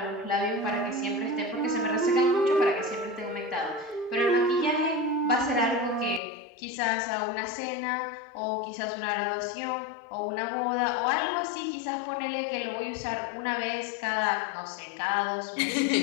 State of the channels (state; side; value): drops out; right; at 6.2 s